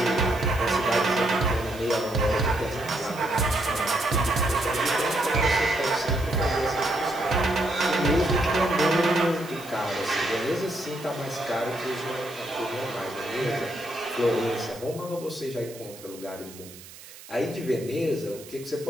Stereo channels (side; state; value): right; noise; hiss, 18 dB below the sound